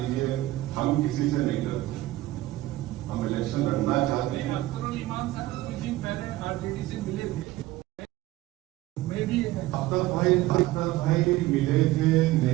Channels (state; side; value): quieter; left; 16.8 dB